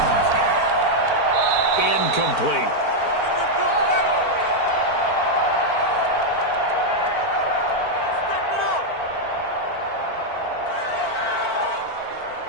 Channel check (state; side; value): late; right; 4.5 ms